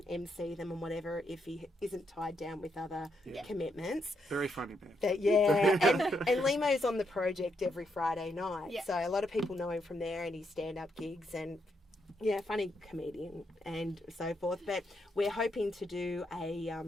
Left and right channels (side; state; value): both; normal; correlation 0.79